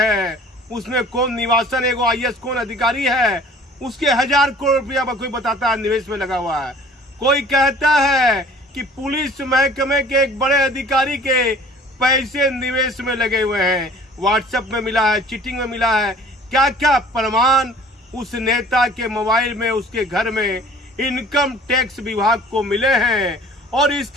उसमें कौन निवासन एगो IAS कौन अधिकारी है, उसके 1000 करोड़ रुपया कोई बताता है निवेश में लगा हुआ है। कोई कहता है कि पुलिस महकमे के एक बड़े अधिकारी के पैसे निवेश में लगे हुए हैं। व्हाट्सएप में मिला है, चीटिंग में मिला है, क्या क्या प्रमाण उस नेता के मोबाइल में, उसके घर में इनकम टैक्स विभाग को मिले हैं और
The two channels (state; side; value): normal; both; correlation 0.50